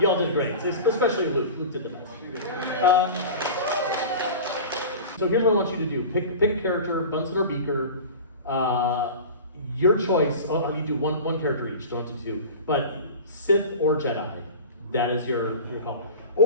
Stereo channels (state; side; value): inverted; both; correlation -0.34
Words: did great. Especially Luke. Luke did the best. So here's what I want you to do. Pick a character, Bunsen or Beaker. Your choice. Oh, you do one character each. Don't do 2. But Sith or Jedi. That is your call.